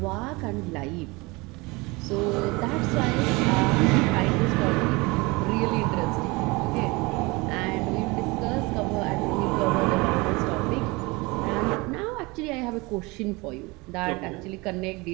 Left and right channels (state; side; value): quieter; left; 24.7 dB